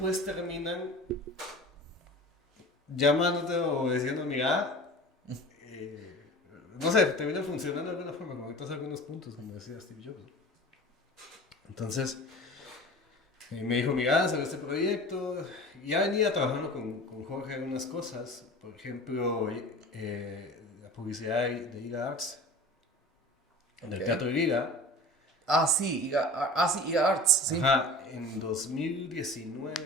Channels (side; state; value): both; normal; correlation 0.38